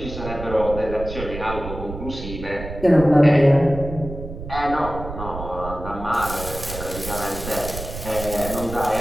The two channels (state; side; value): noise; right; rumble, 9 dB below the sound